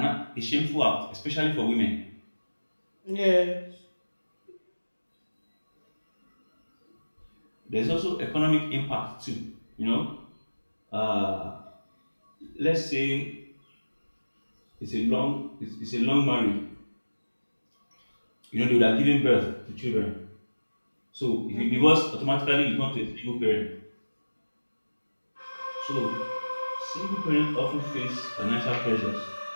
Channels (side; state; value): both; inverted; correlation -1.00